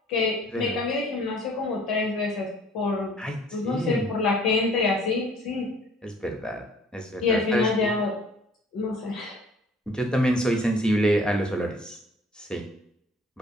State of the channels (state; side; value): normal; both; correlation 0.55